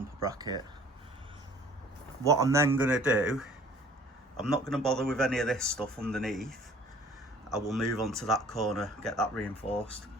bracket. What I'm then going to do, I'm not going to bother with any of this stuff underneath. I will move on to that corner, get that reinforced.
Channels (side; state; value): both; normal; correlation 0.52